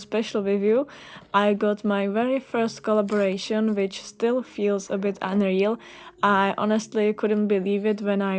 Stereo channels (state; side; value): identical; both; correlation 1.00